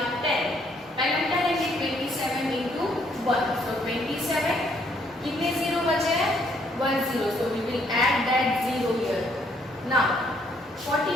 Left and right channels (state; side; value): normal; both; correlation 0.68